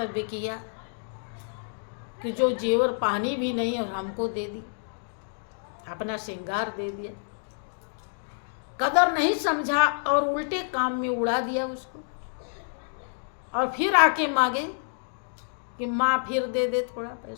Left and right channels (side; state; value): right; silent; digital silence